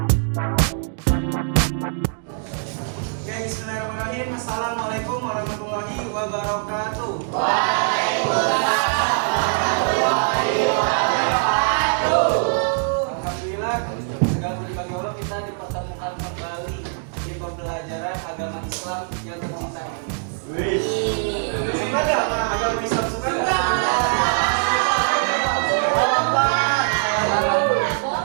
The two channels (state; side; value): silent; left; 64 dB below the other